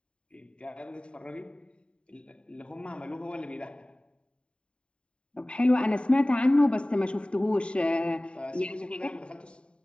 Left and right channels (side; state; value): right; late; 0.054 ms